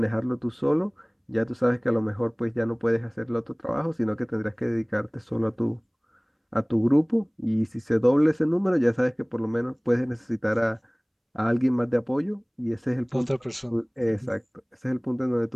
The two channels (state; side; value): identical; both; correlation 1.00